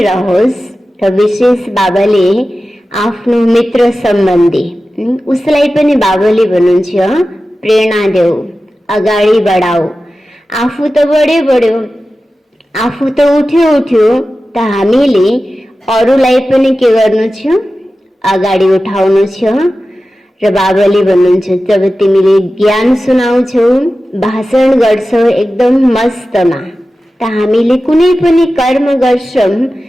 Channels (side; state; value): both; normal; correlation 0.94